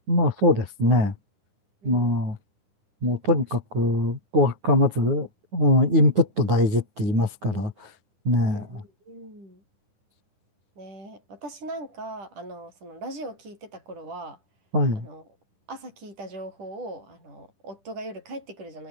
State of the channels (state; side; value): late; left; 9.6 ms